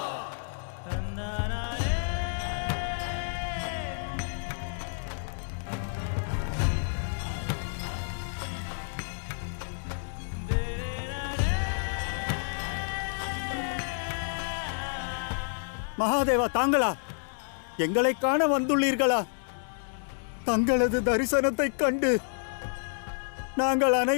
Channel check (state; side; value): silent; right; digital silence